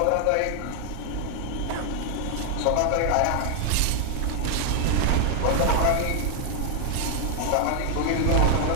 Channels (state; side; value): different; both; correlation 0.00